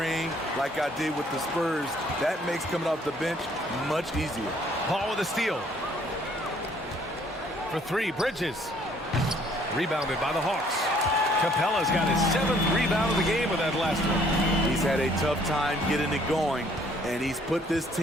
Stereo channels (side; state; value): both; normal; correlation 0.61